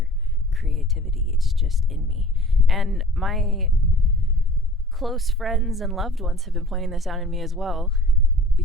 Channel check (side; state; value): both; normal; correlation 0.47